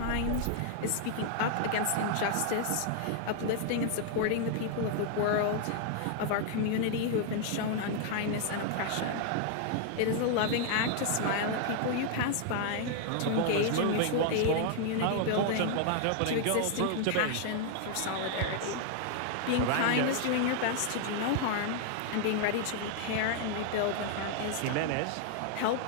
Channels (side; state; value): both; different; correlation 0.00